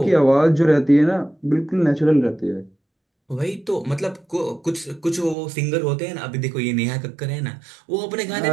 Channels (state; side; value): drops out; left; at 5.4 s